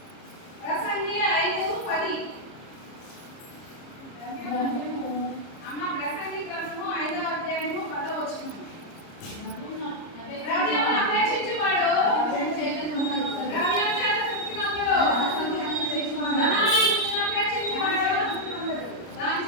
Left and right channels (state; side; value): late; right; 30 ms